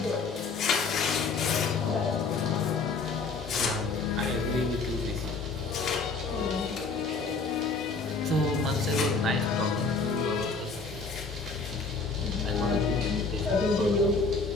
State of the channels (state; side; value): quieter; right; 4.2 dB